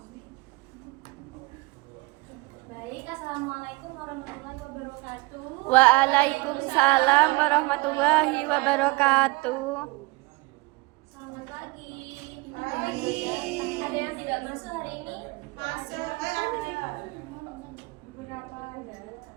Baik, assalamualaikum warahmatullahi wabarakatuh. Waalaikumsalam warahmatullahi wabarakatuh. Selamat pagi. Ada yang tidak masuk hari ini? Masuk.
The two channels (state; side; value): quieter; left; 24.9 dB